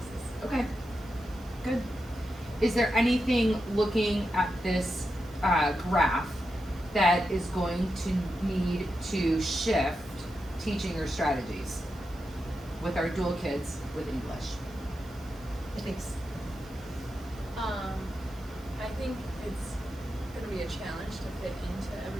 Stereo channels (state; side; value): noise; right; hiss, 25 dB below the sound